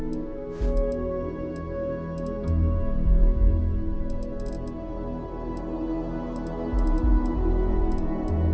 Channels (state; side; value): identical; both; correlation 1.00